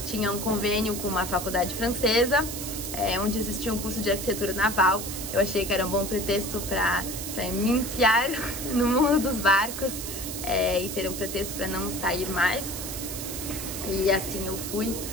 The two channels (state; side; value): noise; right; hiss, 7 dB below the sound